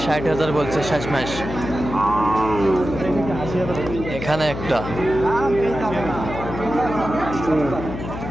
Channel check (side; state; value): left; noise; hum, 8 dB below the sound